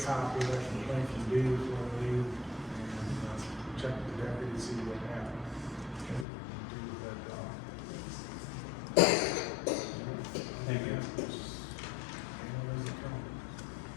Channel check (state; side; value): drops out; right; at 6.2 s